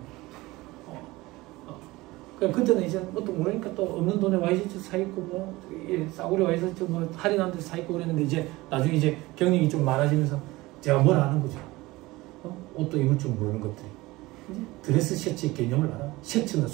그때는 이제 또 모르니까 또 없는 돈에 와이셔츠 사입고 뭐 싸구려 와이셔츠 뭐 할인한 데 사입고 그랬는데 이제 나중에 이제 경력이 좀 많아지면서 제가 뭘 아는 거죠. 옷도 입을 줄 모르는 것들이. 이제 드레스 셔츠의 개념을 알아. 셔츠는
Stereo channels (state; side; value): quieter; left; 20.2 dB